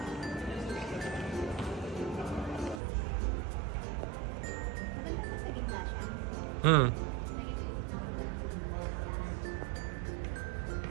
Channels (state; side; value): drops out; left; at 2.8 s